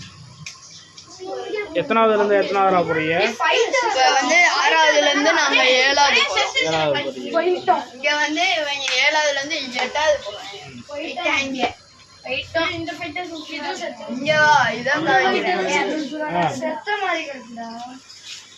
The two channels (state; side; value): identical; both; correlation 1.00